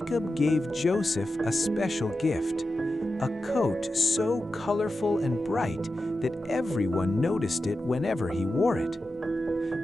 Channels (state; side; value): normal; both; correlation 0.91